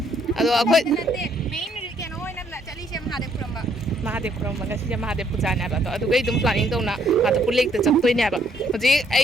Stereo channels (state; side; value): normal; both; correlation 0.68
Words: Ado akhoi main ke no oina la chali se Mahadev Kuramba. Mahadev Kuramba ga si Mahadev puja na ba to adu gai dum planning tawna ma da bulek da chaktoi na ba. Hoji